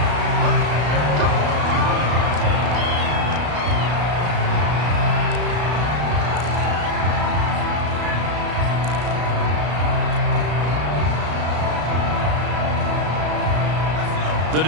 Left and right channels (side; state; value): left; late; 33 ms